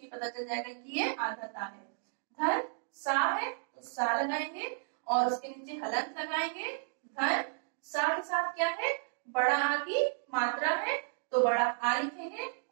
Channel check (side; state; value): left; silent; digital silence